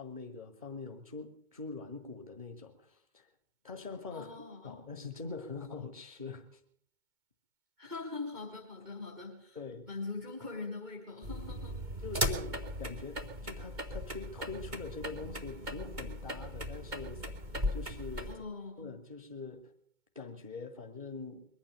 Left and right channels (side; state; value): left; late; 2.2 ms